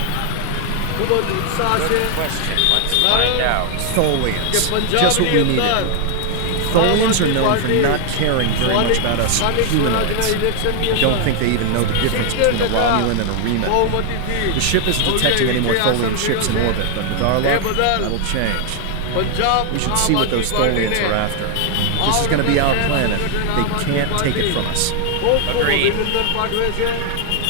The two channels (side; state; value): both; different; correlation 0.00